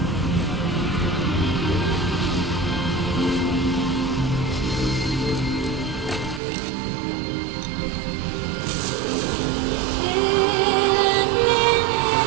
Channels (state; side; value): drops out; left; at 6.4 s